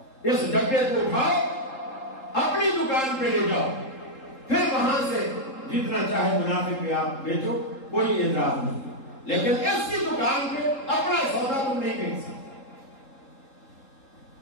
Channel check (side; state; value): right; late; 3.8 ms